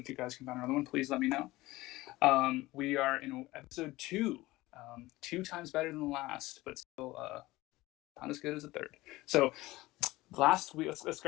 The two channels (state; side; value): quieter; right; 18.9 dB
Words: you guys can find another one, please let me know. We are in episode 2, 2 times better than the last, but still not as good as the third. So last week, let's